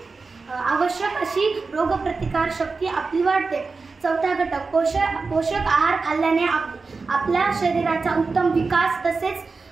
आवश्यक अशी रोगप्रतिकार शक्ती आपली वाढते। चौथा घटक, पोषक आहार खाल्ल्याने आपल्या शरीराचा उत्तम विकास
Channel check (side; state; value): left; quieter; 4.3 dB